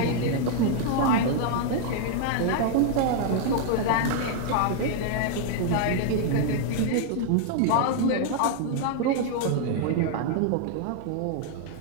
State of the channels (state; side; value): different; both; correlation 0.00